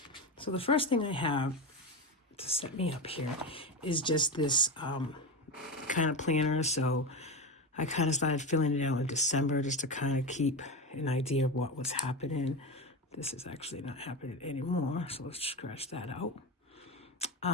So the first thing I have to set me up here is just this kind of planner. So I kind of started filling it out in December just to kind of keep an idea of what was happening. This is actually not happening anymore, so let's scratch that out.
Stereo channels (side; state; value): both; normal; correlation 0.18